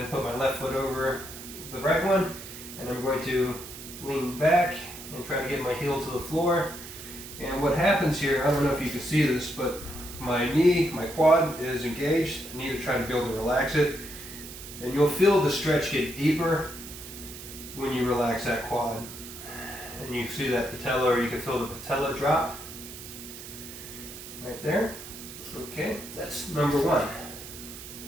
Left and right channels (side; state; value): right; noise; hiss, 13 dB below the sound